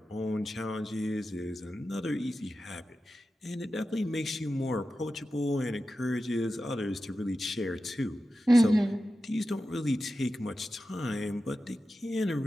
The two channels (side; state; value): both; normal; correlation 0.92